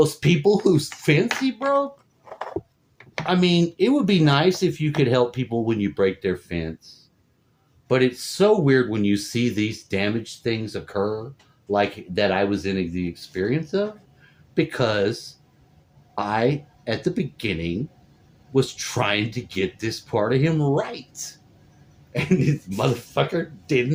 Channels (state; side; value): identical; both; correlation 1.00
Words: people whose fence he broke? I mean, it would be nice if you could help people when you break their fence, but it's so weird when you see these damaged things occur, like that I was in the experience of, because I, at the beginning, was trying to get this part of him right. And this motherfucker